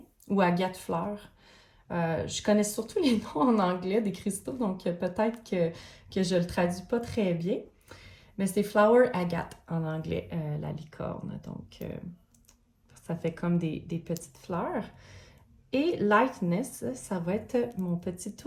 ou agate fleur. Je connais surtout les noms en anglais des cristaux, donc peut-être que je le traduis pas très bien. Mais c'est flower agate en anglais, la licorne. Donc, ça fait comme des petites fleurs. Et Lightness, ça va être mon petit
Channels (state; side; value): identical; both; correlation 1.00